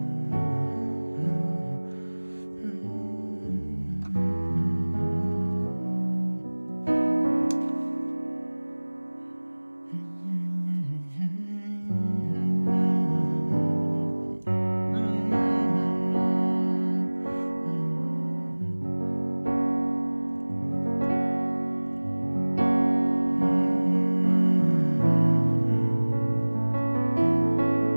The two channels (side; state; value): both; inverted; correlation -1.00